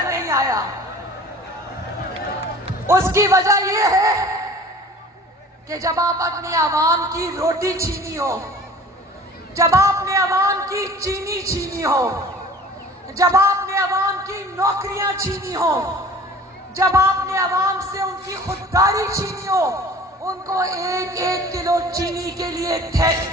نہیں آیا. اس کی وجہ یہ ہے کہ جب آپ اپنی عوام کی روٹی چھینی ہو، جب آپ نے عوام کی چینی چھینی ہو، جب آپ نے عوام کی نوکریاں چھینی ہو، جب آپ نے عوام سے ان کی خودداری چھینی ہو، ان کو 1 کلو چینی کے لیے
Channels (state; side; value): normal; both; correlation 0.45